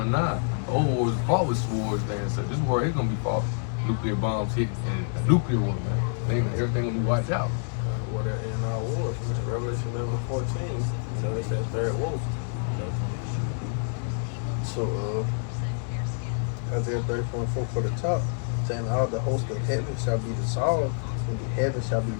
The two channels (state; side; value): silent; right; digital silence